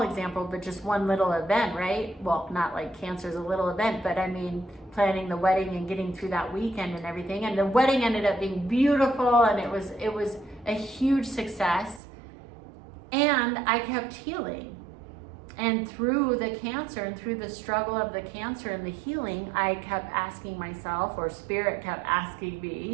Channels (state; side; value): drops out; left; at 12.0 s